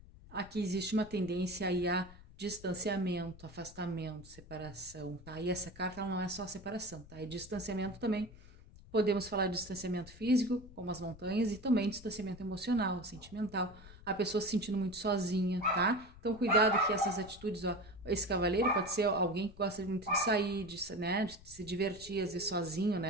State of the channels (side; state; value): left; noise; rumble, 19 dB below the sound